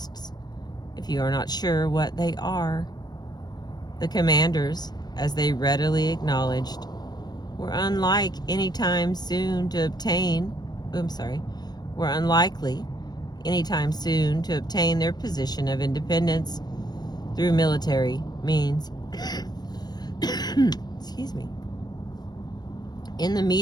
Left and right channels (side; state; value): right; late; 0.19 ms